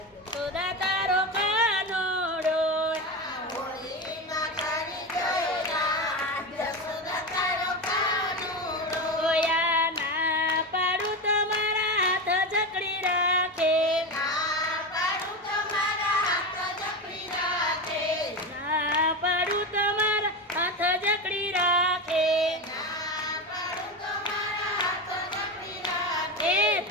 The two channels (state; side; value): normal; both; correlation 0.19